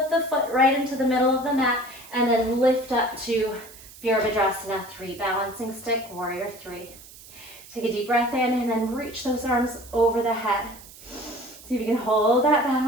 the foot right into the middle of the mat, and then lift up to Virabhadrasana 3. Balancing stick, warrior 3. Take a deep breath in, and then reach those arms over the head. See if you can hold that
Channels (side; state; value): right; noise; hiss, 19 dB below the sound